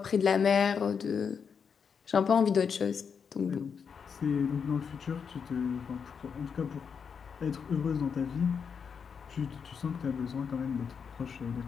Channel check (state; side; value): quieter; right; 6.5 dB